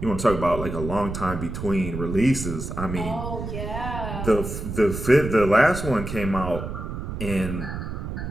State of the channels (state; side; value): noise; right; rumble, 6 dB below the sound